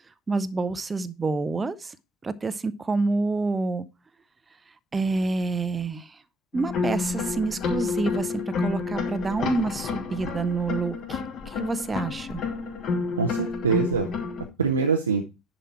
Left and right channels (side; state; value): both; normal; correlation 0.52